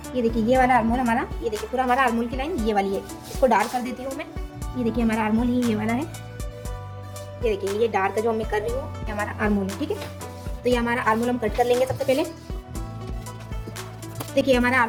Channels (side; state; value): both; identical; correlation 1.00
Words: ये देखिए ये वाला आर्म होल हमारा, ये देखिए पूरा हमारा आर्म होल की लाइन ये वाली है। इसको डार्क कर देती हूँ मैं। ये देखिए हमारा आर्म होल ही ये वाला है। ये देखिए ये डार्क जो मैं कर रही हूँ ये हमारा आर्म होल है, ठीक है। तो ये हमारा आर्म होल हम कट कर लेंगे सबसे पहले। देखिए हमारा